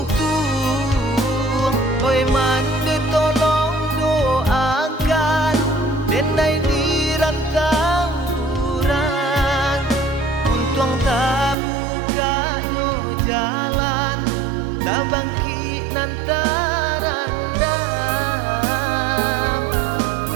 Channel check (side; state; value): left; drops out; at 11.6 s